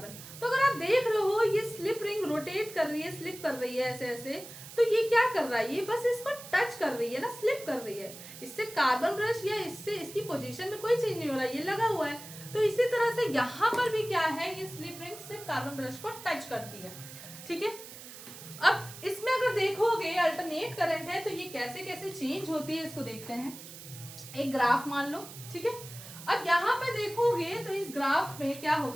तो अगर आप देख रहे हो ये स्लिप रिंग रोटेट कर रही है, स्लिप कर रही है ऐसे ऐसे, तो ये क्या कर रहा है, ये बस इसको टच कर रही है ना, स्लिप कर रही है। इससे कार्बन ब्रश या इससे इसकी पोजीशन में कोई चेंज नहीं हो रहा है, ये लगा हुआ है। तो इसी तरह से यहाँ पर भी क्या है, ये स्लिप रिंग सिर्फ कार्बन ब्रश को टच करती है। ठीक है, अब इसमें अगर देखोगे अल्टरनेट करंट है तो ये कैसे कैसे चेंज होती है इसको देखते हैं। एक ग्राफ मान लो। ठीक है, अब यहाँ पे देखोगे तो इस ग्राफ में क्या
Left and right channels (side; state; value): right; noise; hiss, 14 dB below the sound